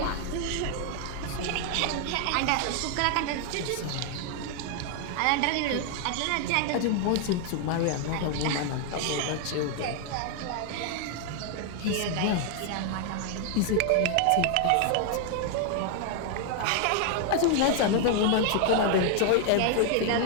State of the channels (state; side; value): different; both; correlation 0.00